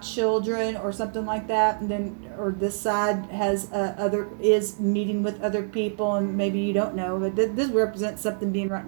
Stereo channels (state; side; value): silent; left; 61 dB below the other